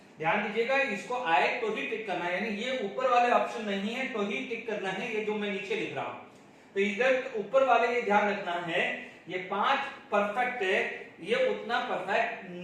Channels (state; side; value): identical; both; correlation 1.00